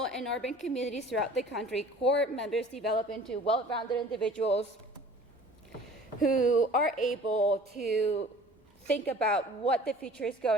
and urban communities throughout the country, Corps members develop into well-rounded individuals who are able to think about what the future is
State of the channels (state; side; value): normal; both; correlation 0.48